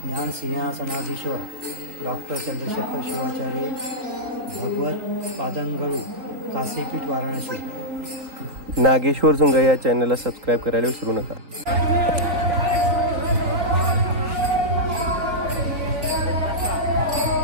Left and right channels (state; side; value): late; left; 4.0 ms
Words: ज्ञान सिंहासनाधीश्वर डॉक्टर चंद्रशेखर शिवाचार्य भगवत पादंगळू काशीपीठ वाराणसी। नागेश्वर झुंगा या चॅनलला सबस्क्राइब करायला विसरू नका।